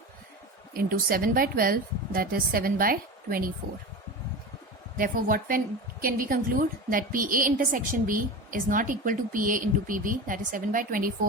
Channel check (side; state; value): both; normal; correlation 0.27